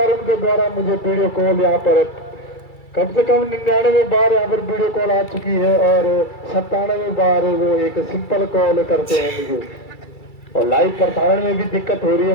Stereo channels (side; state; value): right; late; 2.3 ms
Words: उनके द्वारा मुझे वीडियो कॉल यहाँ पर कम से कम 99 बार यहाँ पर वीडियो कॉल आ चुकी है और 97 बार वो एक सिंपल कॉल करते हैं मुझे, और लाइव प्रसारण में भी दिक्कत हो रही है